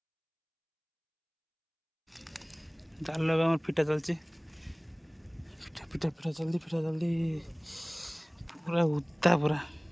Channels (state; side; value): identical; both; correlation 1.00